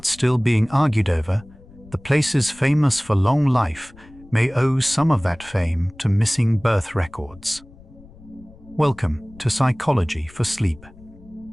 still being argued over, the places famous for long life may owe some of that fame to missing birth records. Welcome to Psychology for Sleep.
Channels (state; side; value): noise; left; rumble, 23 dB below the sound